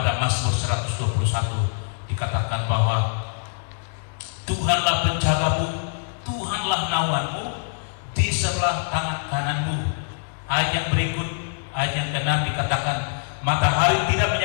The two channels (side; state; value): right; silent; digital silence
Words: Mazmur 121. Dikatakan bahwa Tuhanlah penjagamu, Tuhanlah naunganmu di sebelah tangan kananmu. Ayat yang berikut, ayat yang ke-6 dikatakan, matahari tidak